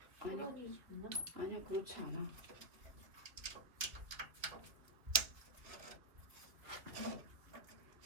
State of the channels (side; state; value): left; late; 2.8 ms